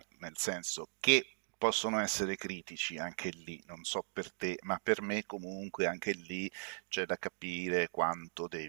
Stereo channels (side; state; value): left; silent; digital silence